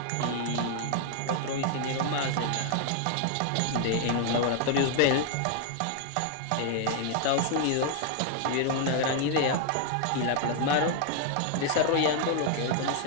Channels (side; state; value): both; different; correlation 0.00